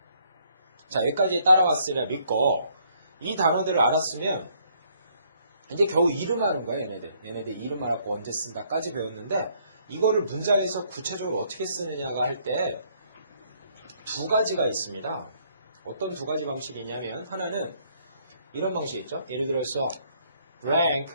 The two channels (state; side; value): inverted; both; correlation -0.67